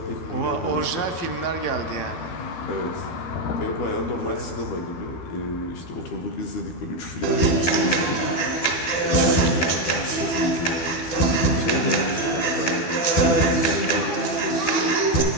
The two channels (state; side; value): late; right; 12 ms